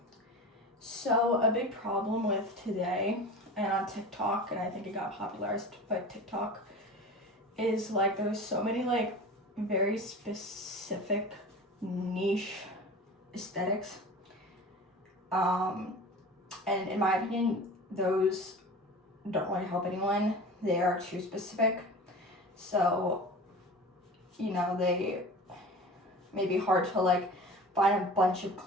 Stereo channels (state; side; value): normal; both; correlation 0.35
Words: So, a big problem with today and on TikTok, and I think it got popularized by TikTok, is like there's so many like very specific niche aesthetics. And in my opinion, those don't really help anyone. They are too specific. So, they may be hard to like find a bunch of